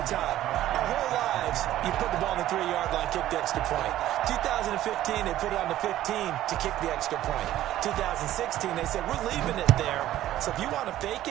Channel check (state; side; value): quieter; left; 13.6 dB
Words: time. Our whole lives, you put the ball on the 3-yard line, kick the extra point. 2015, they put it on the 15 to kick the extra point. 2016, they said, we're leaving it there. So if you want to fake